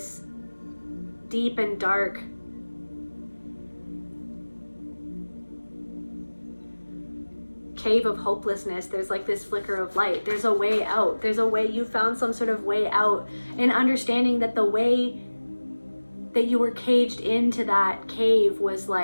deep and dark cave of hopelessness. There's like this flicker of light. There's a way out. There's a way. You found some sort of way out, and understanding that the way that you were caged into that cave was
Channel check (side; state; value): both; inverted; correlation -1.00